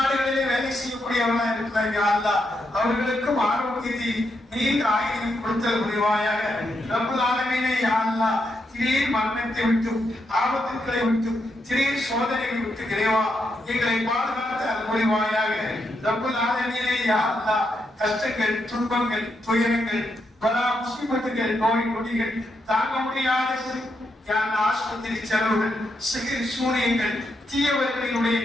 வேலை செய்யக்கூடியவர்களாக இருக்கிறார். யா அல்லாஹ், அவர்களுக்கும் ஆரோக்கியத்தை நீண்ட ஆயுளையும் கொடுத்தல் புரிவாயாக. ரப்புல் ஆலமீனே, யா அல்லாஹ், திடீர் மரணத்தை விட்டும் ஆபத்துக்களை விட்டும் திடீர் சோதனைகளை விட்டு இறைவா எங்களை பாதுகாத்து அருள் புரிவாயாக. ரப்புல் ஆலமீனே, யா அல்லாஹ், கஷ்டங்கள், துன்பங்கள், துயரங்கள், பல முசீபத்துகள், நோய் நொடிகள், தாங்க முடியாத ஆஸ்பத்திரி செலவுகள், சிகிர் சூனியங்கள், தீயவர்களினுடைய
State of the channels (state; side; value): normal; both; correlation 0.81